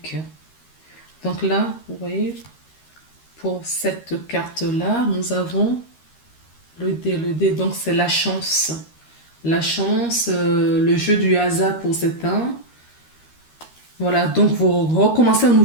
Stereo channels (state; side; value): late; right; 13 ms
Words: Donc là, vous voyez, pour cette carte-là, nous avons le dé. Le dé, donc c'est la chance. La chance, le jeu du hasard pour certains. Voilà, donc vous recommencez un